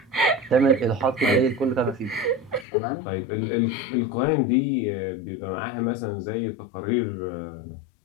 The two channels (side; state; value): right; drops out; at 2.7 s